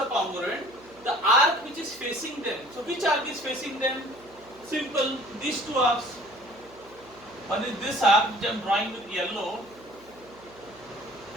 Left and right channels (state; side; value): noise; right; hum, 24 dB below the sound